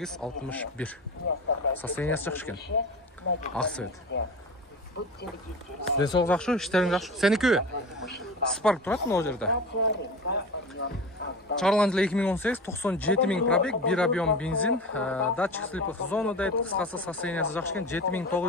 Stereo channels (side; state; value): both; normal; correlation 0.30